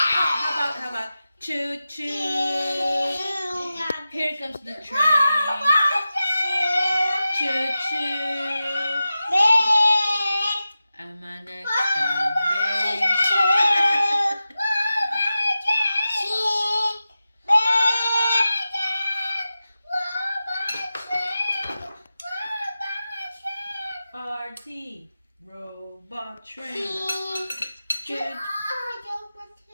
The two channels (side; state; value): both; inverted; correlation -0.93